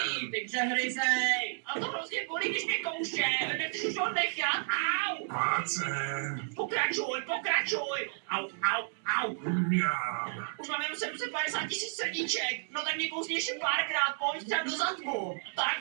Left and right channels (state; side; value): silent; left; digital silence